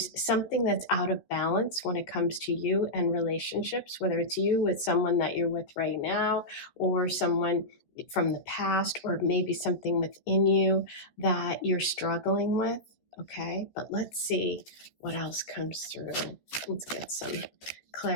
something that's out of balance when it comes to you and relationships, whether it's you with someone that you're with right now or someone from the past, or maybe something within you that you're struggling with. Okay, but let's see what else comes through. Let's get some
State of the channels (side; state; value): right; late; 14 ms